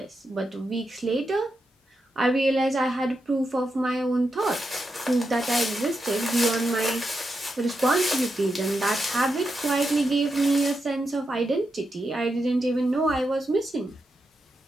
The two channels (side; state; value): both; normal; correlation 0.86